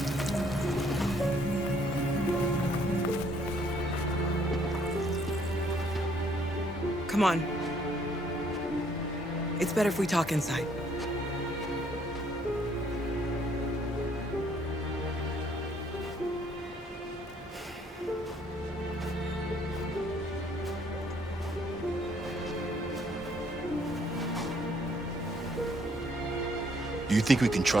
Come on. It's better if we talk inside. Do you think we can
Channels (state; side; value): normal; both; correlation 0.65